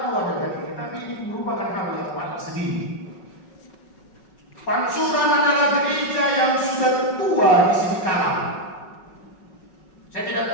dengan ini, tapi ini merupakan hal yang paling sedih. Pansuran adalah gereja yang sudah tua di sini kalam. Saya tidak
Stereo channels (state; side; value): late; right; 5.4 ms